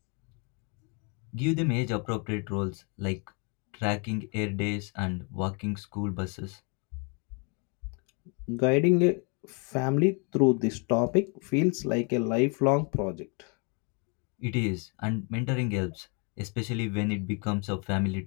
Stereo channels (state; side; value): quieter; right; 34.3 dB